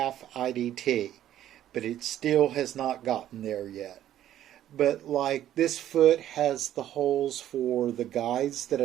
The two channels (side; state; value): left; quieter; 11.9 dB